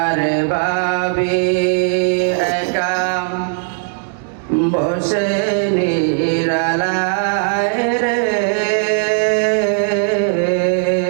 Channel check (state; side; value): silent; left; digital silence